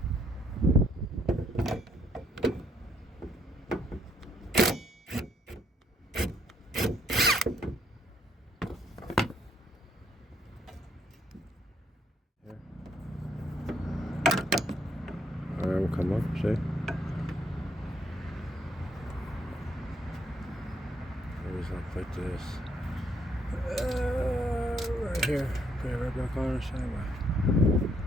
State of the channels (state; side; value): normal; both; correlation 0.70